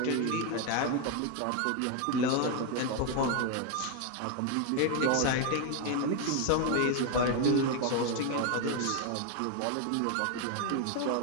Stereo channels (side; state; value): both; different; correlation 0.01